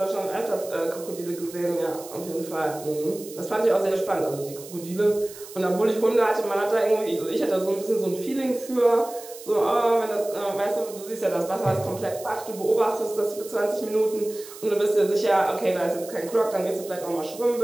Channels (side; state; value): right; noise; hiss, 16 dB below the sound